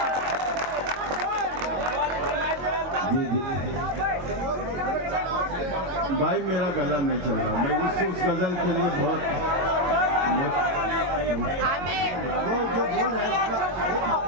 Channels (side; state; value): left; late; 22 ms